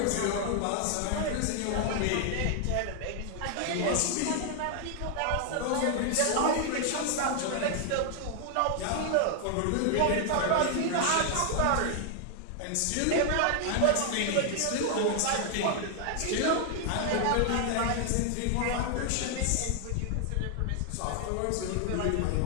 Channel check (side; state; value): both; different; correlation 0.00